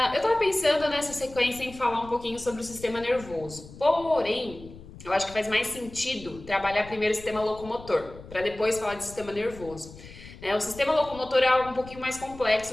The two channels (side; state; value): left; noise; rumble, 17 dB below the sound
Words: estava pensando nessa sequência em falar um pouquinho sobre o sistema nervoso. Porém, eu acho que faz mais sentido trabalhar primeiro o sistema locomotor, para depois falar de sistema nervoso. O sistema locomotor é algo um pouquinho mais